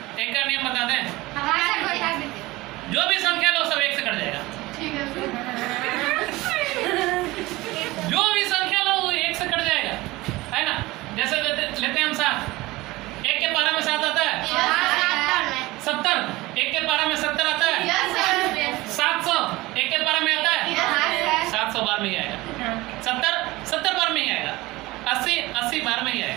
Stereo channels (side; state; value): left; quieter; 20.0 dB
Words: एक का नियम बता दें। हाँ सर बता दीजिए। जो भी संख्या लो सब 1 से कट जाएगा। ठीक है सर। जो भी संख्या लो वो 1 से कट जाएगा, है ना। जैसे लेते हैं हम 7, 1 के पारा में 7 आता है 70, 1 के पारा में 70 आता है 700, 1 के पारा में आता है 700 बार में ही आएगा। 70 बार में ही आएगा। 80 बार में ही